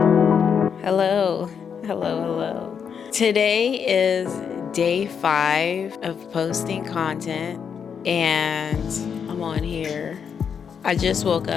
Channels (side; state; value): right; quieter; 7.1 dB